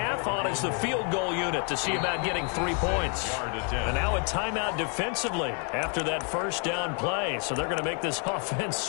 On is the field goal unit to see about getting 3 points. And now a timeout defensively after that first down play. So they're going to make this offense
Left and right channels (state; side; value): quieter; right; 39.3 dB